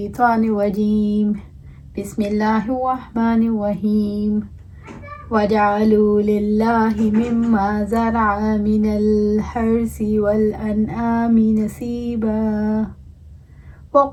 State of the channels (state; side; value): identical; both; correlation 1.00